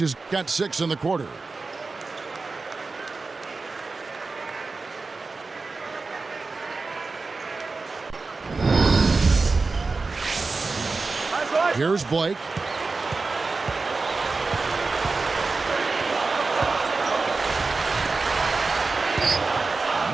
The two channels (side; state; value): left; quieter; 4.0 dB